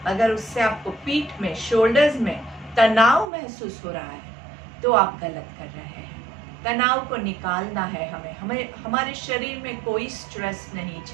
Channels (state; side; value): drops out; left; at 3.2 s